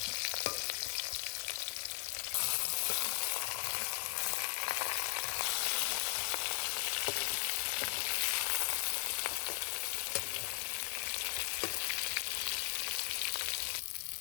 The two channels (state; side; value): silent; right; 53 dB below the other